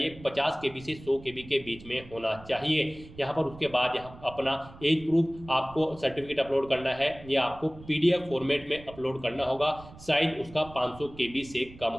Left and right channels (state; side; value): noise; right; rumble, 19 dB below the sound